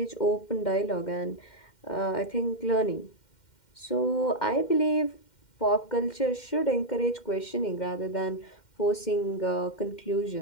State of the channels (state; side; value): late; right; 2.1 ms